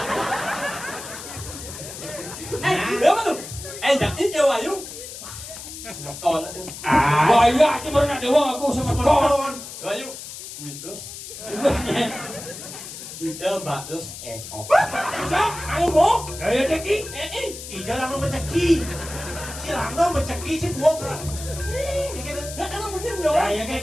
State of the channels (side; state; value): left; noise; hiss, 11 dB below the sound